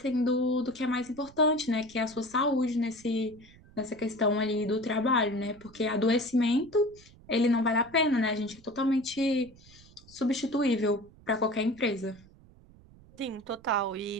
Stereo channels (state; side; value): noise; right; rumble, 24 dB below the sound